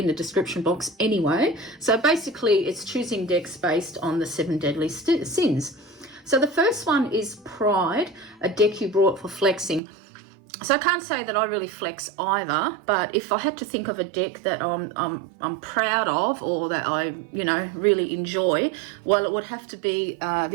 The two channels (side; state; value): left; drops out; at 9.8 s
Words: the description box anyway. So basically it's choosing decks based on the 7 Deadly Sins. So the first one is Pride, a deck you brought for flexing. So I can't say that I really flex either, but if I had to think of a deck that I'm proud of or that I really enjoy, well, it would have to be